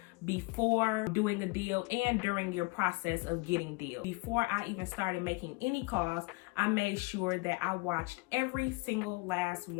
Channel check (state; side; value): quieter; right; 26.7 dB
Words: before doing a deal and during your process of getting deals. Before I even started making any calls, I made sure that I watched every single last